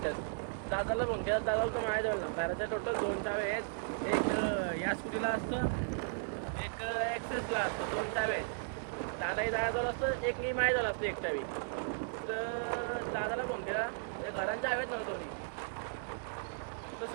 दादाला फोन केला दादा तर माहिती झालं घराच्या टोटल 2 चावे आहेत एक या स्कूटीला असतं एक एक्सेसला असतं 2 चावे आहेत दादाही दादाजवळ असतं एक मी माहीत झालं असतं एक चावी तर दादाला फोन केला ते घरांच्या चाव्याच नव्हतं दोन्ही तर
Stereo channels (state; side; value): silent; left; digital silence